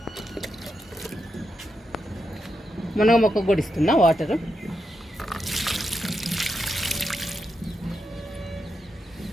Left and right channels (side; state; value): both; normal; correlation 0.85